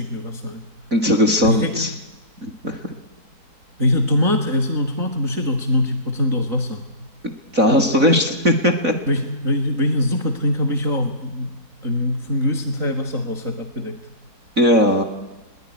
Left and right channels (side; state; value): left; late; 4.0 ms